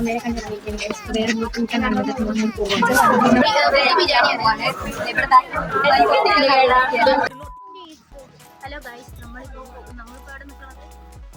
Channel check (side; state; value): both; identical; correlation 1.00